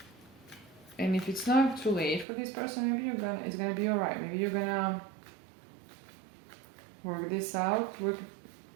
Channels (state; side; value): drops out; left; at 2.2 s